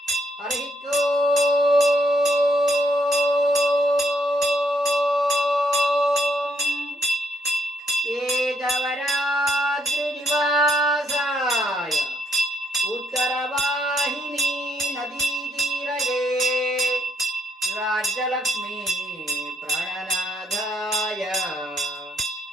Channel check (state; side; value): normal; both; correlation 0.74